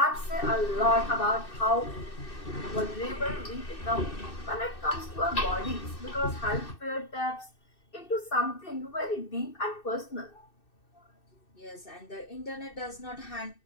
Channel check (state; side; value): late; right; 2.6 ms